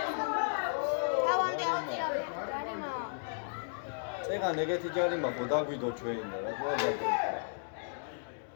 წეგან ეგეთი ჯარიმა ხო დაგვიდო ჩვენ და რა თქმა უნდა.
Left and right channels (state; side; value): silent; right; digital silence